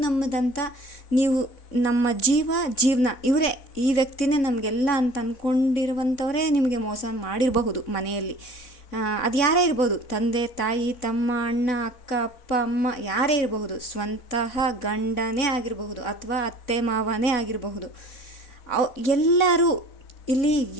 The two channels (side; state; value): right; late; 4.0 ms